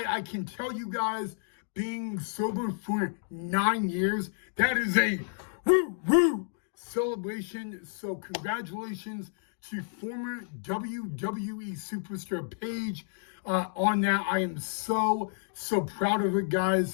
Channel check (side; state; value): right; silent; digital silence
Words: can tell you guys, being sober for 9 years, that is a woo celebration. So congratulations to former WWE superstar Paige on that. I am so proud of her,